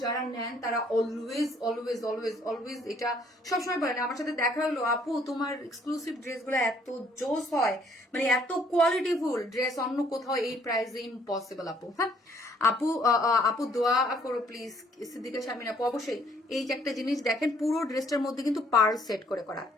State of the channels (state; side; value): normal; both; correlation 0.63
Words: যারা নেন তারা অলওয়েজ অলওয়েজ অলওয়েজ অলওয়েজ এটা সবসময় বলেন। আমার সাথে দেখা হলো আপু তোমার এক্সক্লুসিভ ড্রেসগুলো এত জোস হয়, মানে এত কোয়ালিটিফুল ড্রেস অন্য কোথাও এই প্রাইসে ইম্পসিবল আপু, হ্যাঁ? আপু দোয়া করো প্লিজ, সিদ্দিকা শারমিন আপু। অবশ্যই এই যে একটা জিনিস দেখেন, পুরো ড্রেসটার মধ্যে কিন্তু পার্ল সেট করে করা,